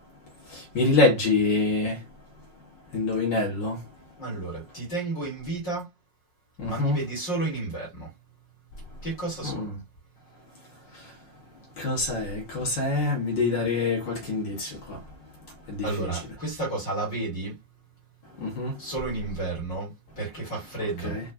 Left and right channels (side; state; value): right; late; 5.6 ms